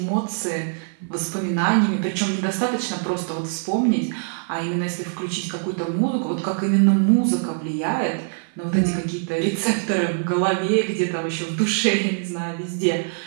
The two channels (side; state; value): left; silent; 56 dB below the other